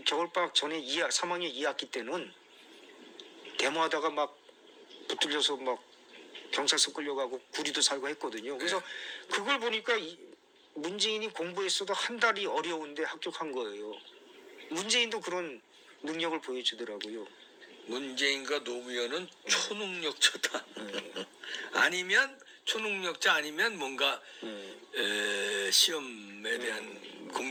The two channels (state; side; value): identical; both; correlation 1.00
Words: 겨울방학 전에 3학년 2학기 때는 데모하다가 막 붙들려서 막 경찰서 끌려가고 구리도 살고 했거든요. 그래서 그걸 보니까 문재인이 공부했어도 한 달이 어려운데 합격한 거예요. 문재인도 그런 능력을 보여주더라고요. 문재인과 노무현은 초능력자다. 아니면 초능력자 아니면 뭔가 시험에 대한